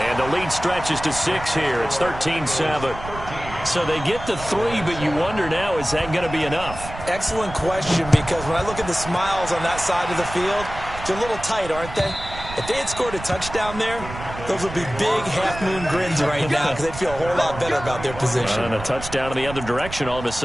the lead stretches to 6 here. It's 13-7. So they get the 3, but you wonder now, is that going to be enough? Excellent question, because when I look at the smiles on that side of the field, they're a little tight, aren't they? If they had scored a touchdown there, those would be big half-moon grins right now, because they'd feel a whole lot better about their position. And a touchdown in the other direction, all of a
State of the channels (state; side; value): noise; right; rumble, 11 dB below the sound